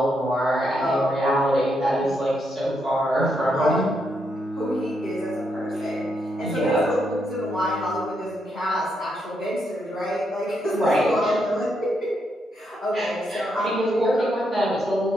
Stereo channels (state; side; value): normal; both; correlation 0.79